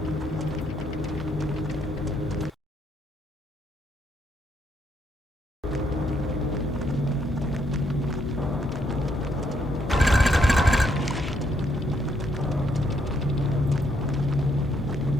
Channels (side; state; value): both; normal; correlation 0.73